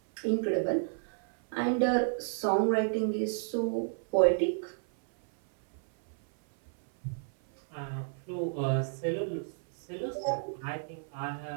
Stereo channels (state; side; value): silent; left; 57 dB below the other